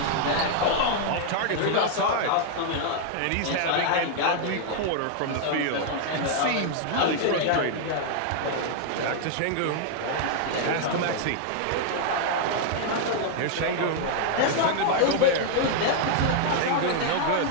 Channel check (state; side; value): different; both; correlation -0.01